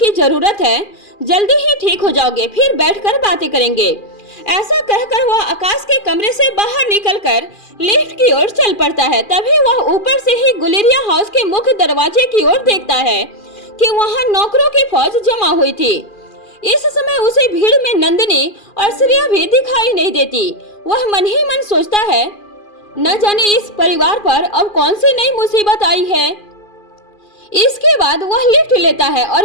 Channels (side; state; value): right; late; 2.4 ms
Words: जरूरत है, जल्दी ही ठीक हो जाओगे, फिर बैठकर बातें करेंगे। ऐसा कहकर वह आकाश के कमरे से बाहर निकलकर लिफ्ट की ओर चल पड़ता है। तभी वह ऊपर से ही गुलेरिया हाउस के मुख्य दरवाजे की ओर देखता है कि वहां नौकरों की फौज जमा हुई थी। इस समय उसे भीड़ में नंदिनी और श्रेया भी दिखाई नहीं देती। वह मन ही मन सोचता है, न जाने इस परिवार पर अब कौन सी नई मुसीबत आई है। इसके बाद वह लिफ्ट लेता है और